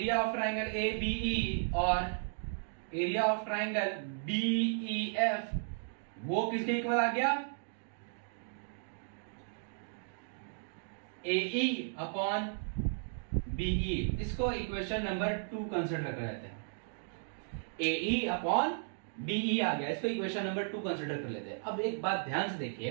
of triangle A BE और area of triangle BE F, वो किसके equal आ गया, एई अपॉन बीई। इसको इक्वेशन नंबर 2 कंसिडर कर लेते हैं, एई अपॉन बीई आ गया, इसको इक्वेशन नंबर 2 कंसिडर कर लेते हैं। अब एक बात ध्यान से देखिए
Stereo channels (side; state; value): left; silent; digital silence